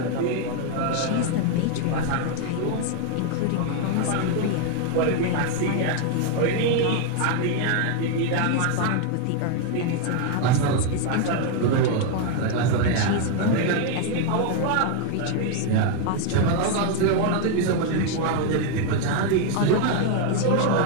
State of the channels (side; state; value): both; different; correlation 0.01